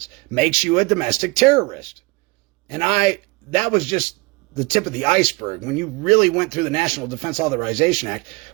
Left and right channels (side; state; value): left; quieter; 25.4 dB